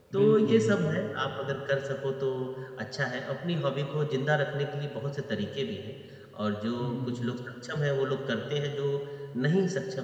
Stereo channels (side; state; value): both; identical; correlation 1.00